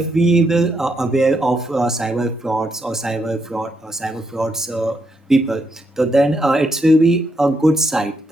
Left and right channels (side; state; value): both; normal; correlation 0.78